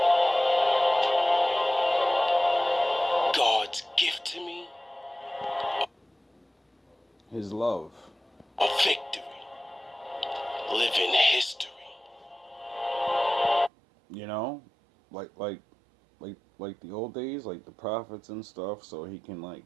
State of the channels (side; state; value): left; drops out; at 13.7 s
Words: God's gift to me, His love. a victory. Living history. You know? Like the old days, like the prophets and stuff, so he can like